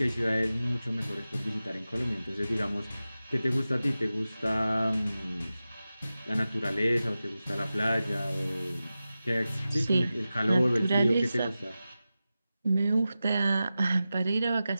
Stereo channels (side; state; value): both; inverted; correlation -0.94